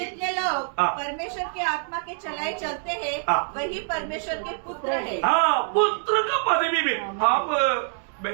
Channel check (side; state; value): left; silent; digital silence